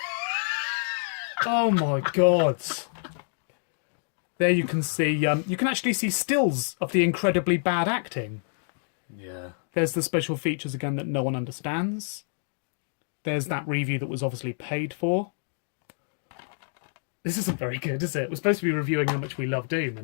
Oh my god. There you can see, you can actually see stills of the incredibly bad acting. Yeah. There's the special features again that no one understands. There's that review that was obviously paid for. This isn't very good, is it? We're supposed to be reviewing how much we love Doom.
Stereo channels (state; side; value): silent; right; digital silence